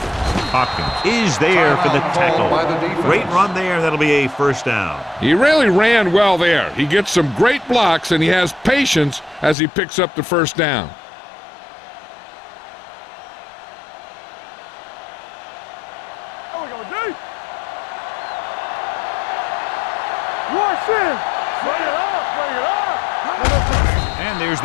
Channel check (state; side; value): drops out; right; at 9.6 s